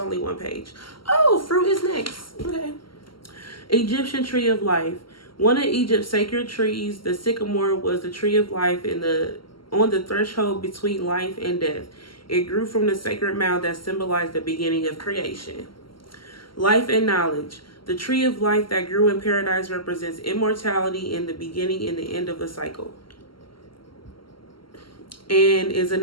one page. Oh, fruit is next. Okay. Egyptian tree of life. One of Egypt's sacred trees, the sycamore, was the tree of life on the threshold between life and death. It grew from the sacred mound that symbolized the beginning of creation. Life and knowledge. The tree of life that grew in paradise represents immortality and the beginning and the end of the cycle, and is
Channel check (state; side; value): late; right; 0.73 ms